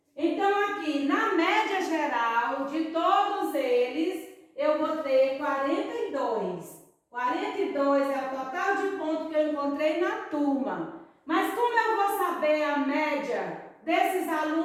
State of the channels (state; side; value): identical; both; correlation 1.00